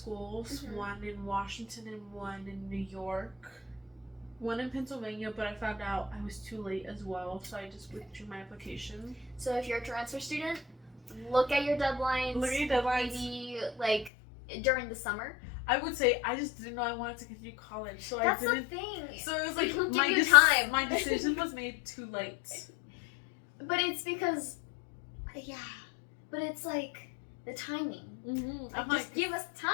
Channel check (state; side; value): drops out; right; at 14.1 s